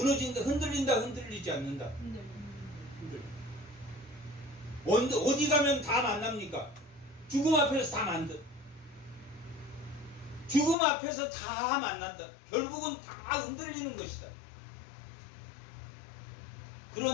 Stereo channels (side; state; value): right; drops out; at 10.8 s